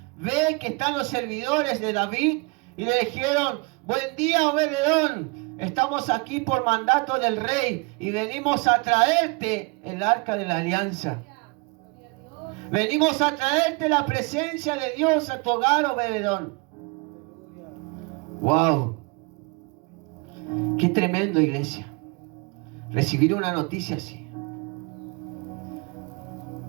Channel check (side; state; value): left; quieter; 29.2 dB